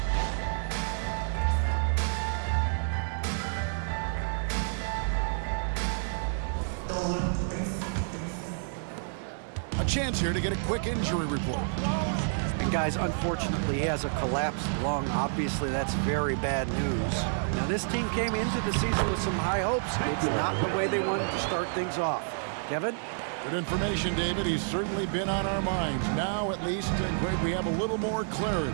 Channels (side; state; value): left; silent; digital silence